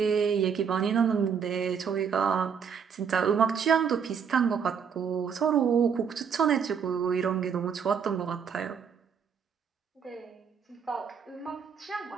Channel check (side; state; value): left; quieter; 6.9 dB